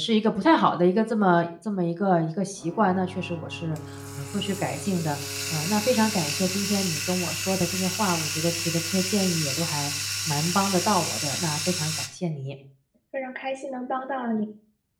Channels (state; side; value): identical; both; correlation 1.00